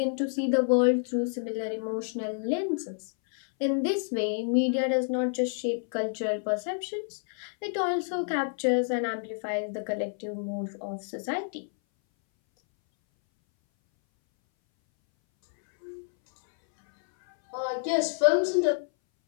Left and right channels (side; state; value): right; silent; 59 dB below the other